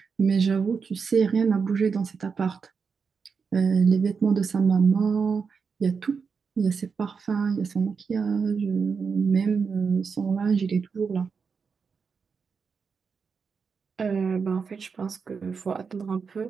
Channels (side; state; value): left; quieter; 5.6 dB